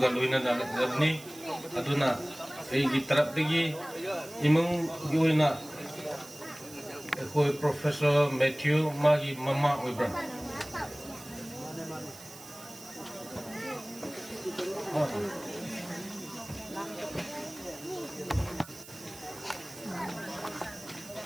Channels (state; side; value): noise; right; hiss, 17 dB below the sound